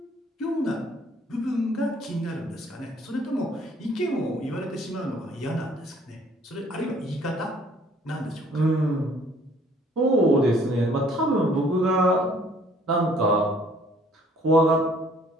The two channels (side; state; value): both; normal; correlation 0.59